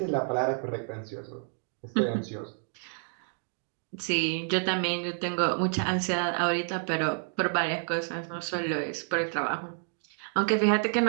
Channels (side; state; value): left; silent; 58 dB below the other